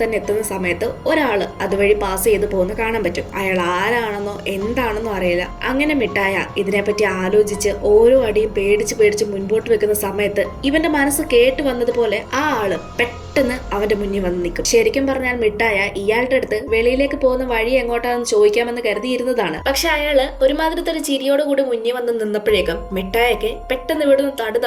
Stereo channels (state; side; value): identical; both; correlation 1.00